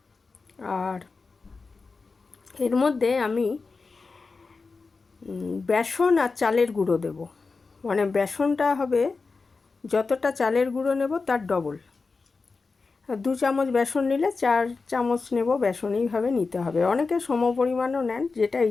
আর এর মধ্যে আমি বেসন আর চালের গুঁড়ো দেব, মানে বেসনটা হবে যতটা চালের গুঁড়ো নেব তার ডবল। 2 চামচ বেসন নিলে 4 চামচ নেব বেসন, এইভাবে নিতে হবে। অনেকে সম পরিমাণও নেন, যেটা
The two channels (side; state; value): right; quieter; 4.2 dB